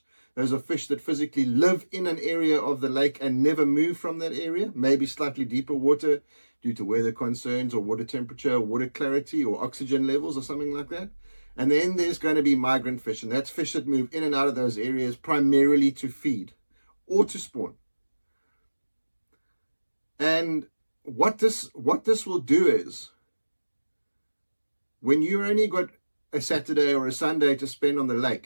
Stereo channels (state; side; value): inverted; both; correlation -1.00